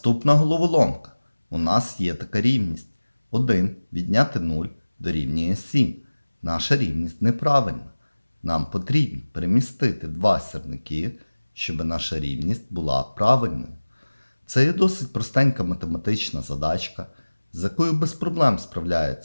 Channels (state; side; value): inverted; both; correlation -1.00